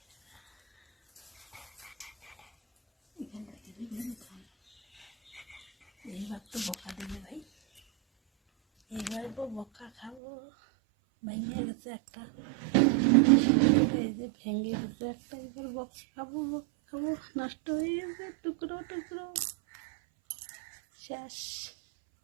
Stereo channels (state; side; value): drops out; left; at 10.2 s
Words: এইবার তো বকা দেবে ভাই, এবার বকা খাবো। ভেঙে গেছে একটা, এই যে ভেঙে গেছে একটা, এবার বকা খাবো, বকা খাবো। নষ্ট হয়ে গেছে, টুকরো টুকরো, শেষ।